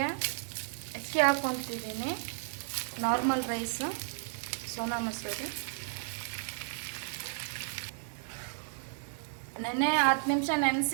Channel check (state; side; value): silent; left; digital silence